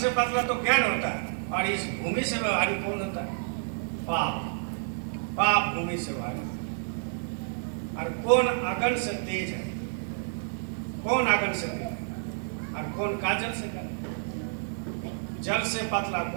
पतला तो ज्ञान होता है, और इस भूमि से भारी कौन होता है? पाप। पाप भूमि से भारी। और कौन अगन से तेज है? कौन अगन से तेज है और कौन काजल से कम? जल से पतला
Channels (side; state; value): left; silent; digital silence